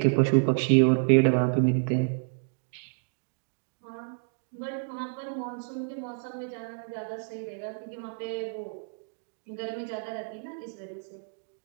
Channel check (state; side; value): silent; left; digital silence